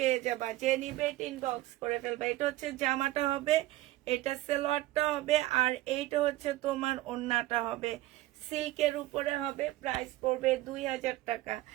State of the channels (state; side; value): quieter; left; 16.8 dB